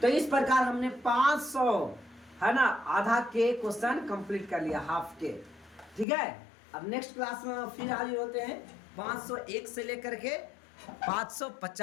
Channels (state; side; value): drops out; right; at 6.1 s